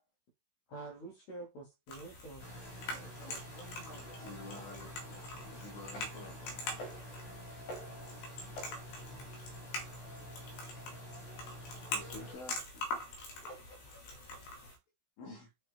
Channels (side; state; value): right; late; 16 ms